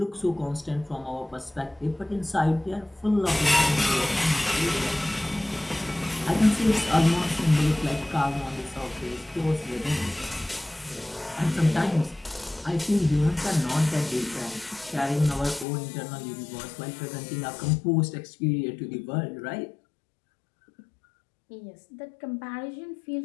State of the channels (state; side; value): drops out; right; at 15.7 s